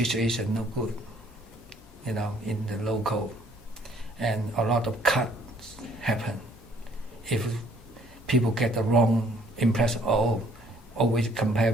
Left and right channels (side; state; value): both; normal; correlation 0.61